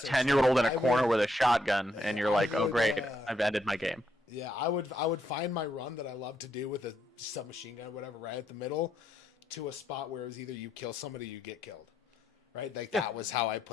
in a corner with a shotgun, and you're like, oh great, I've ended my game. Yeah, I would find my run that I love to do with a submachine gun or whatever right at the middle, to a spot where it was either you kill somebody or you get killed, right? Like that was how I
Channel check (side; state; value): both; normal; correlation 0.76